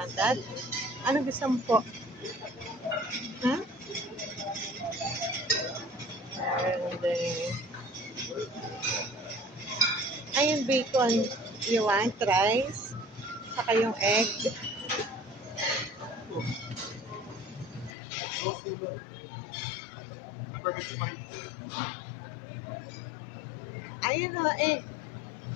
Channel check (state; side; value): drops out; right; at 17.9 s